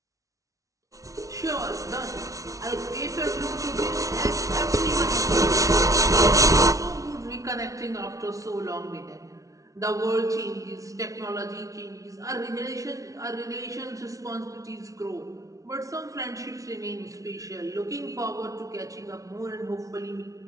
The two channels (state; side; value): late; left; 0.16 ms